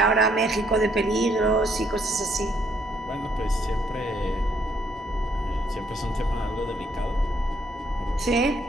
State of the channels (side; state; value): both; normal; correlation 0.70